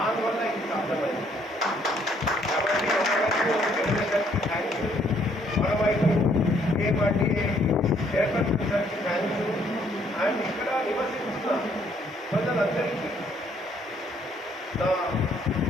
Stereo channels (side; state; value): both; normal; correlation 0.66